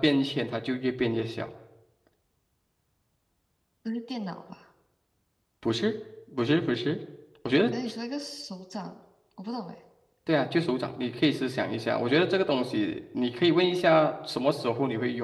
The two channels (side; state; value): both; identical; correlation 1.00